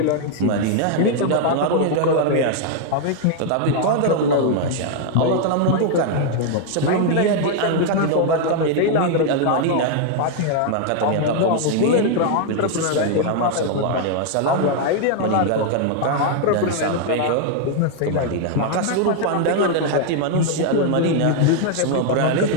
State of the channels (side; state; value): both; different; correlation 0.00